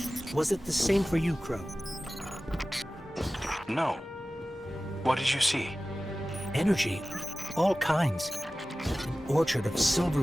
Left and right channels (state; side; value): normal; both; correlation 0.96